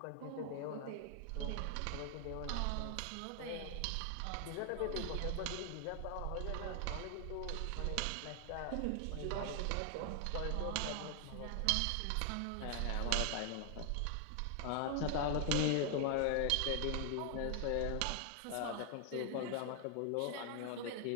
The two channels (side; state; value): both; different; correlation 0.00